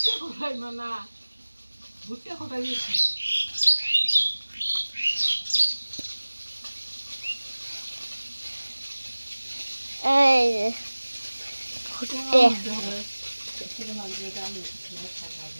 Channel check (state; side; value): inverted; both; correlation -1.00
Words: কোথায় মানা, ভুট্টা কোথায় গেছি? এই যে ভুট্টে।